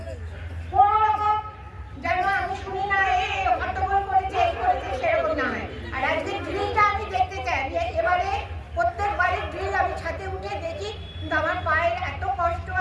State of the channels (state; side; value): identical; both; correlation 1.00